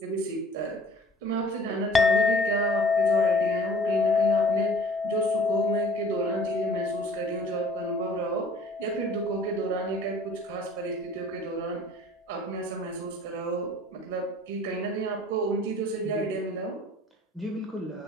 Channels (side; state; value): both; normal; correlation 0.51